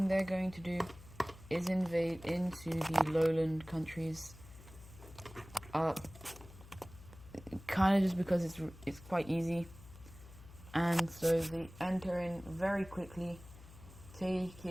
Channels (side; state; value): left; noise; hum, 19 dB below the sound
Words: they're going to do is invade into the lowland countries. Kind of just because it's quite easy. And so they enter in very quickly,